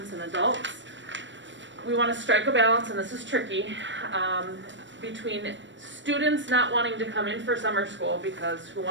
and adults. We want to strike a balance, and this is tricky, between students not wanting to come in for summer school, because who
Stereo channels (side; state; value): left; late; 0.54 ms